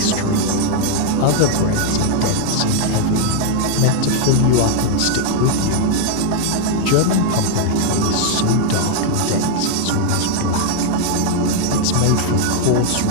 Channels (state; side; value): different; both; correlation 0.00